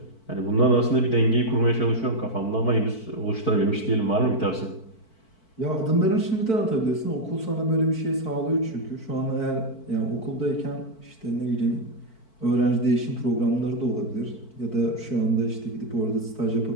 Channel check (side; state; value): right; late; 4.5 ms